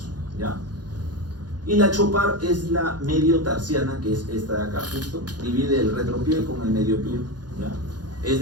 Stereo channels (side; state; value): left; late; 0.69 ms